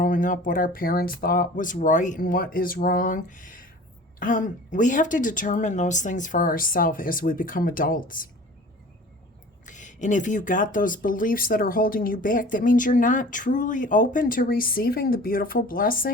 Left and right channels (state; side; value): normal; both; correlation 0.43